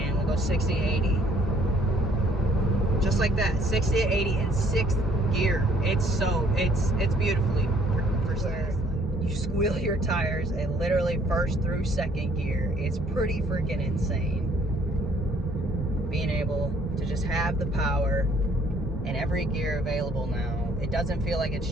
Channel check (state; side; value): normal; both; correlation 0.62